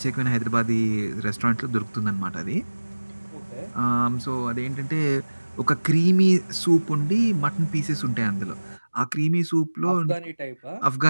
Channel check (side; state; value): both; inverted; correlation -1.00